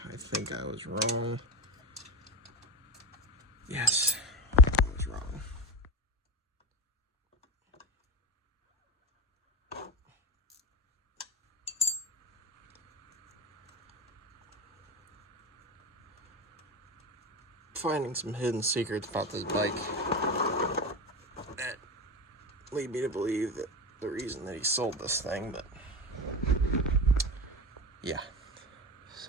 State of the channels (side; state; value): both; normal; correlation 0.22